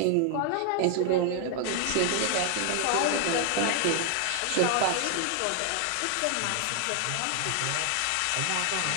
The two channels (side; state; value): both; different; correlation 0.00